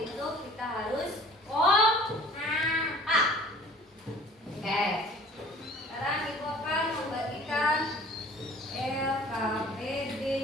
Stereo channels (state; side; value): normal; both; correlation 0.48